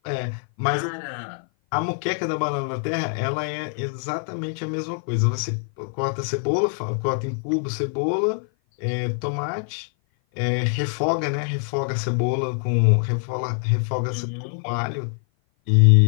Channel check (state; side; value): silent; right; 56 dB below the other